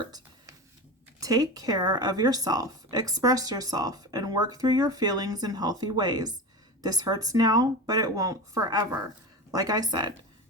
take care of yourself, express yourself, and work through your feelings in healthy ways. This hurts now, but it won't forever. Like I said,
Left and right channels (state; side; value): normal; both; correlation 0.27